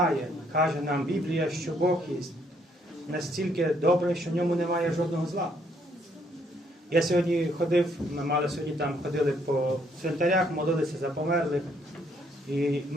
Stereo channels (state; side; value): normal; both; correlation 0.69